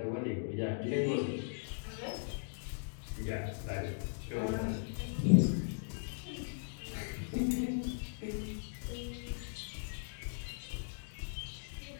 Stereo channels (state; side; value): silent; right; digital silence